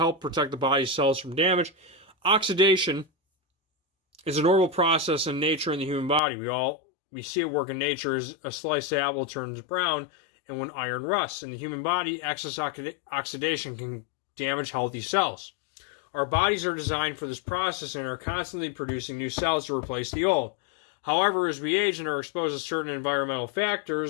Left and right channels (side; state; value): right; drops out; at 6.2 s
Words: protect the body's cells from damage. Oxidation is a normal process in nature in the human body. We see it work in nature as a sliced apple turns brown and when iron rusts. In the human body, excess oxidation can damage healthy cells. Our bodies are designed for this process and are constantly producing new cells to replace the old. However, as we age and are exposed to certain environmental